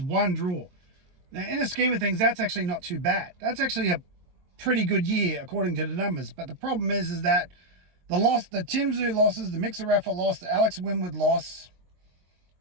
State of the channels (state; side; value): late; left; 22 ms